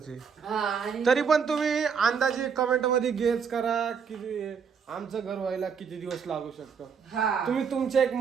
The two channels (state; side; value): quieter; left; 6.4 dB